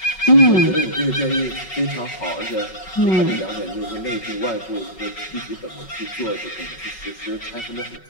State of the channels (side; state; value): right; late; 5.4 ms